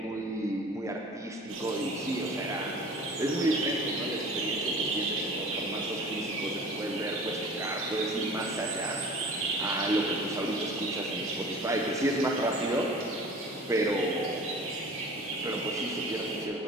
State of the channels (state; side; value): normal; both; correlation 0.42